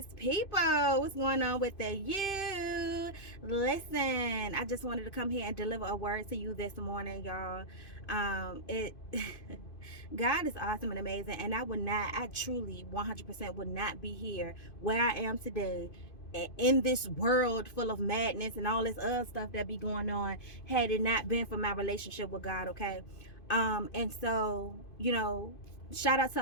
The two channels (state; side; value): late; right; 2.5 ms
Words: people. What's going on with the you? Listen, I just wanted to come here and deliver a word to you this morning, y'all. It God is awesome and amazing, and I truly 100% would not be here where I am today in this world full of madness and all this other stuff that be going on had it not been for my relationship with God, okay? And so, shout out